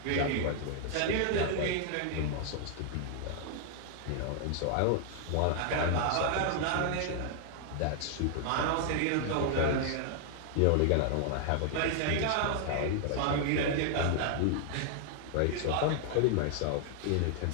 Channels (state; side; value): different; both; correlation 0.00